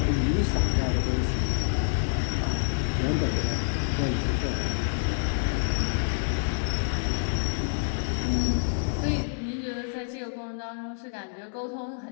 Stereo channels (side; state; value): right; silent; digital silence